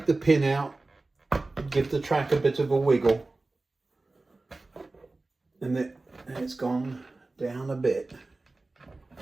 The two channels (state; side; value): quieter; left; 3.3 dB